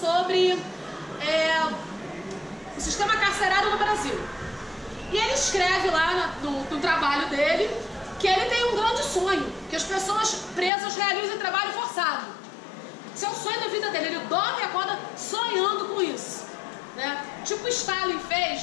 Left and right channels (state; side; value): drops out; right; at 10.7 s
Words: o sistema carcerário no Brasil. E ele escreve lá no trabalho dele que ele tem um grande sonho, que as pessoas presas realizem trabalho forçado. Esse é o sonho da vida dele, ele dorme e acorda sonhando com isso, né? Tipo Stalin